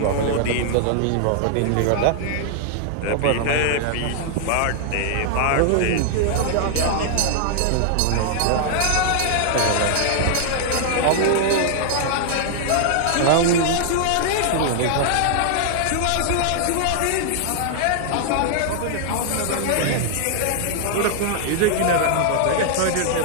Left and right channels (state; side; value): different; both; correlation 0.00